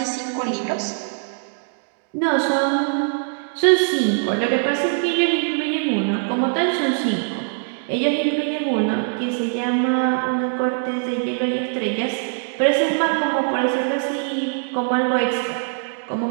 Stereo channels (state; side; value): silent; left; digital silence